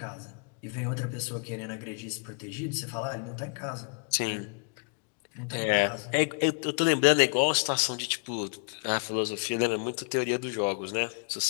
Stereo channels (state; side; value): quieter; right; 37.7 dB